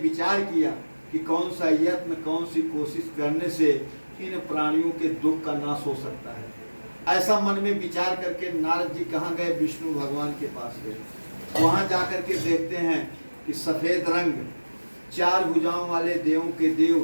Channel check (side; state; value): both; inverted; correlation -1.00